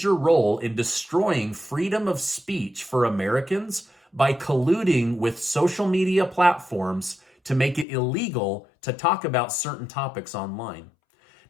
role in destroying freedom of speech for Americans by colluding with social media platforms to make it illegal to talk about certain topics online.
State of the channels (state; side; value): drops out; right; at 7.9 s